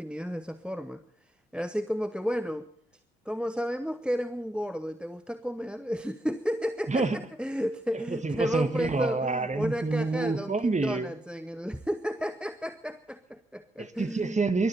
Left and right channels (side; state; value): both; normal; correlation 0.82